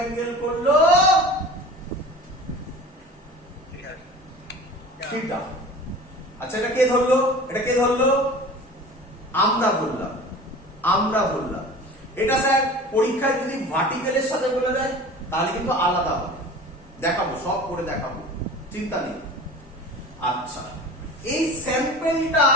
করলো থিটা। আচ্ছা এটা কে ধরলো? এটা কে ধরলো? আমরা ধরলাম। এটা স্যার পরীক্ষায় যদি ভার্টিক্যালের সাথে বলে দেয় তাহলে কিন্তু আলাদা হবে, দেখাবো, সব করে দেখাবো, চিন্তা নেই। আচ্ছা, এই স্যাম্পেলটা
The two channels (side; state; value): both; normal; correlation 0.39